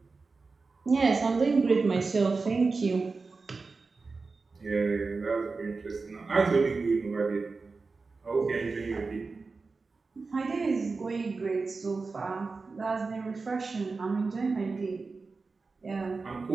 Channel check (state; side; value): quieter; left; 4.2 dB